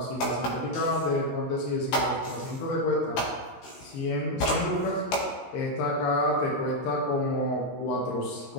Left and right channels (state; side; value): late; right; 16 ms